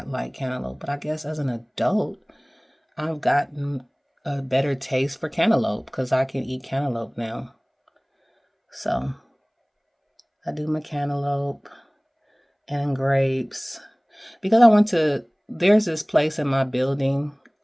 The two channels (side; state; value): both; identical; correlation 1.00